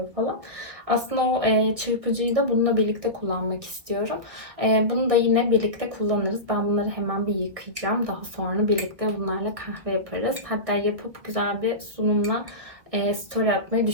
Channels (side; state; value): left; late; 1.8 ms